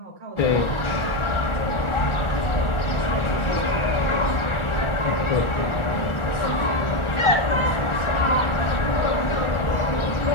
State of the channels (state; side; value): late; right; 1.4 ms